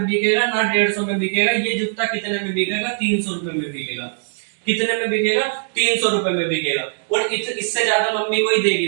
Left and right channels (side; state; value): left; silent; digital silence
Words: बिकेगा ना 150 में बिकेगा, ये जूता कितने में बिकेगा? 300 रुपए में बिकेगा। कितने में बिकेगा? 300 रुपए में बिकेगा। और इससे ज्यादा मम्मी कोई देगी